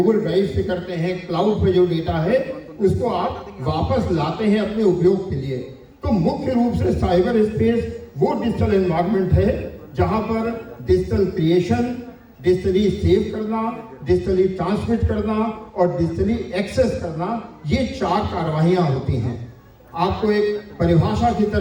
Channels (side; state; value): both; identical; correlation 1.00